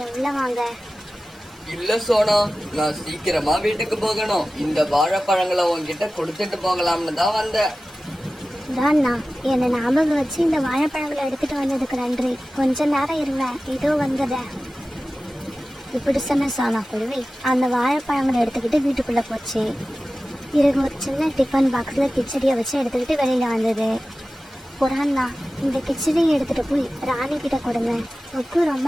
உள்ள வாங்க. இல்ல சோனா, நான் சீக்கிரமா வீட்டுக்கு போகணும். இந்த வாழைப்பழங்களை உன்கிட்ட கொடுத்துட்டு போகலாம்னு தான் வந்தேன். அண்ணா, என்னை ஞாபகம் வச்சு இந்த வாழைப்பழங்களை எடுத்துட்டு வந்ததுக்கு நன்றி. கொஞ்ச நேரம் இருவேன், இதோ வந்தத. இப்படி சொன்ன சோனா குருவி அந்த வாழைப்பழங்களை எடுத்துக்கிட்டு வீட்டுக்குள்ள போச்சு. பிறகு ஒரு சின்ன டிஃபன் பாக்ஸ்ல கிச்சடியை வச்சு எடுத்துக்கிட்டு வெளியில வந்தது. புறாண்ணா, இந்த கிச்சடியை எடுத்துட்டு போய் ராணி கிட்ட கொடுங்க. ஒக்கு ரொம்ப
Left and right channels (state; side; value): normal; both; correlation 0.95